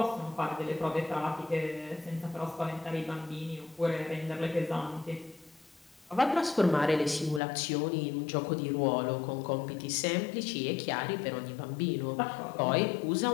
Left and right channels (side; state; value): right; drops out; at 7.4 s